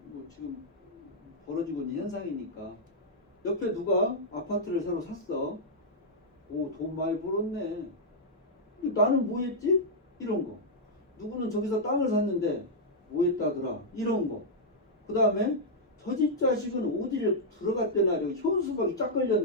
뭐 지금 벌어지고 있는 현상이니까. 옆에 누가 아파트를 새로 샀어. 오, 돈 많이 벌었네. 나는 뭐 했지? 이런 거. 누구는 저기서 땅을 샀는데 뭐 했다더라. 이런 거. 그 다음에 저 집 자식은 어디를 들어갔대나, 현수막이 쫙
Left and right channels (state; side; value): normal; both; correlation -0.06